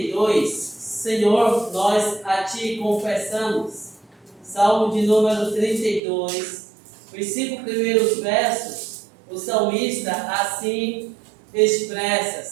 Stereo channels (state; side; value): drops out; left; at 6.0 s